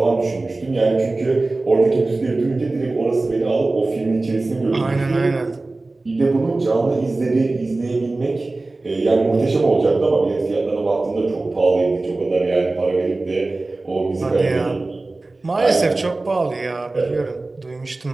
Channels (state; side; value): quieter; left; 3.2 dB